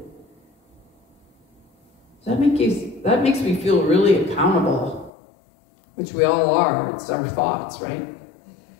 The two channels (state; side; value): drops out; right; at 5.1 s